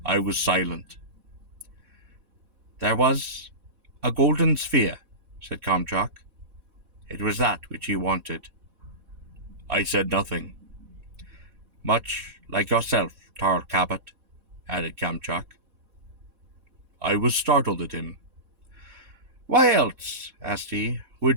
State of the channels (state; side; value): late; left; 4.1 ms